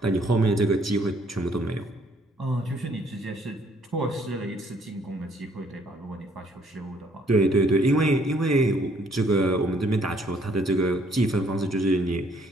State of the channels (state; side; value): normal; both; correlation 0.65